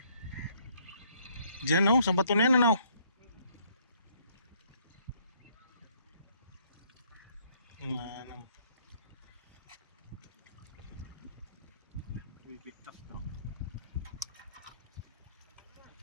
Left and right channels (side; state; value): both; inverted; correlation -0.66